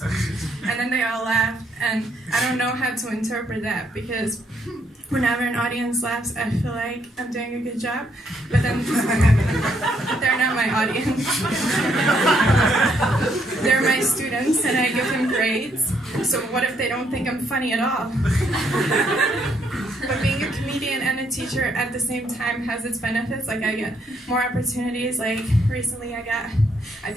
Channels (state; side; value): normal; both; correlation 0.72